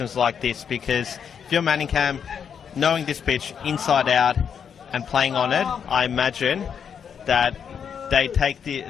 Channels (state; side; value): quieter; right; 7.4 dB